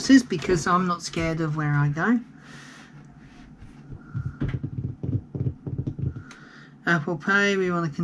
because I'm not scared of where I go. Apple Pay, we want to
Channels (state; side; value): identical; both; correlation 1.00